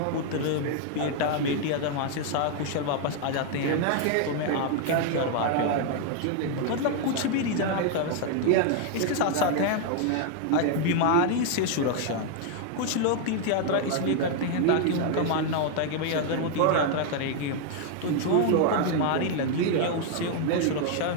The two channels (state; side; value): different; both; correlation 0.00